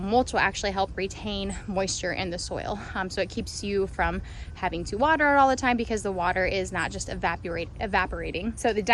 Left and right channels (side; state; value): both; identical; correlation 1.00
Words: will actually help retain moisture in the soil. So it keeps you from having to water it all the time because the water is not just evaporating. So the